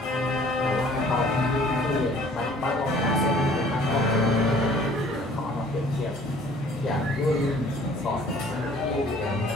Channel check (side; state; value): both; normal; correlation 0.53